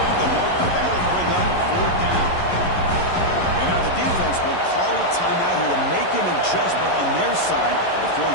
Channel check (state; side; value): late; right; 11 ms